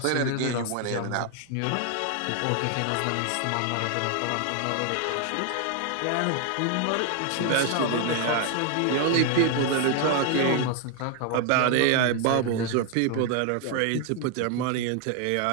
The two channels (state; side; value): different; both; correlation 0.00